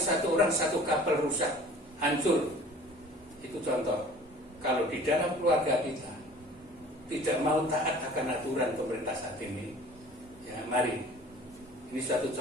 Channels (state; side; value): normal; both; correlation 0.47